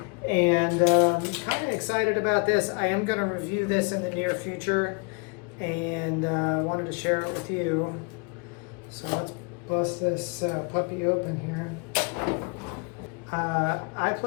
and kind of excited about this. I am going to review this in the near future, and wanted to share it with you. So let's bust this puppy open here. I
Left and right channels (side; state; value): right; quieter; 33.5 dB